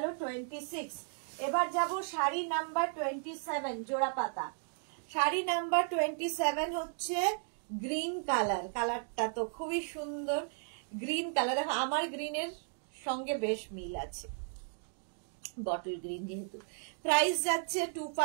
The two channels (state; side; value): silent; left; 55 dB below the other